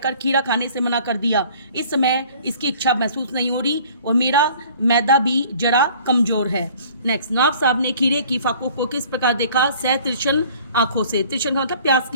खीरा खाने से मना कर दिया? इस समय इसकी इच्छा महसूस नहीं हो रही और मेरा मैदा भी जरा कमजोर है। नेक्स्ट, नवाब साहब ने खीरे की फाकों को किस प्रकार देखा? तिरछन आंखों से। तिरछन का मतलब प्यास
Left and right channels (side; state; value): both; inverted; correlation -0.52